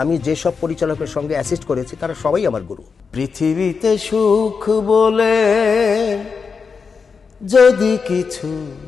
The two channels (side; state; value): right; quieter; 5.4 dB